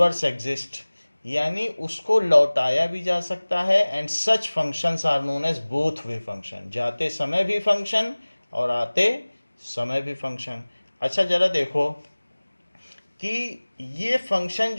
exists, यानी उसको लौटाया भी जा सकता है। And such functions are known as both way function, जाते समय भी फंक्शन और आते समय भी फंक्शन। अच्छा जरा देखो कि ये फंक्शन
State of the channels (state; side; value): inverted; both; correlation -1.00